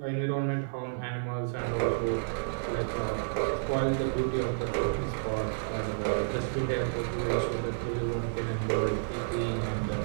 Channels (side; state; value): left; silent; digital silence